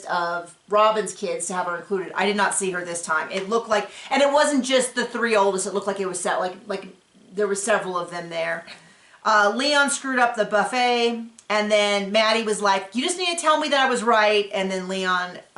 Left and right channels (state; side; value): identical; both; correlation 1.00